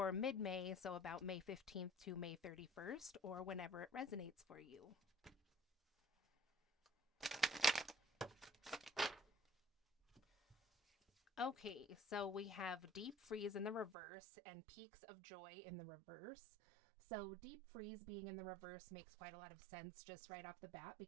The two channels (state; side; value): drops out; left; at 14.0 s